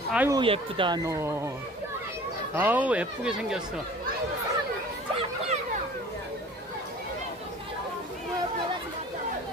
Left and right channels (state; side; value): normal; both; correlation 0.45